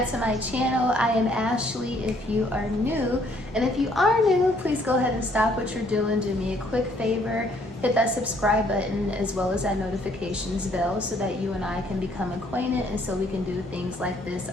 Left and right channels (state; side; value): normal; both; correlation 0.65